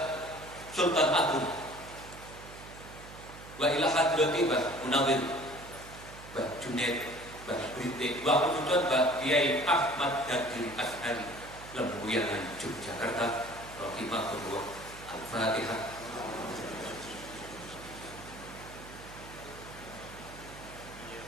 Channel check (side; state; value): right; noise; hum, 16 dB below the sound